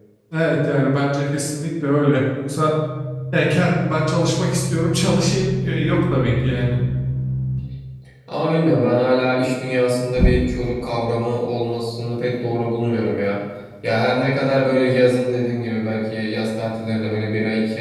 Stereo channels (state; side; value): identical; both; correlation 1.00